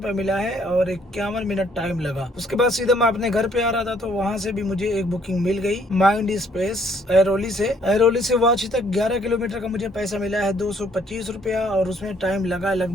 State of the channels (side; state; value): both; normal; correlation 0.65